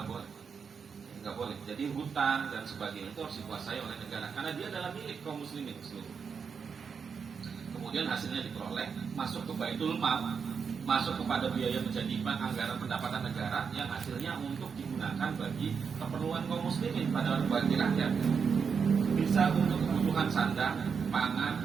boleh. Jadi hutan dan sebagainya itu harus dikuasai oleh negara karena dia adalah milik kaum muslimin seluruh. Kemudian hasilnya diperoleh masuk ke Baitul Mal, masuk kepada biaya menjadi anggaran pendapatan negara yang hasilnya untuk digunakan bagi keperluan kaum muslimin pada bagi rakyat. Bisa untuk kebutuhan sandang, pangan,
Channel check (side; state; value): left; quieter; 6.1 dB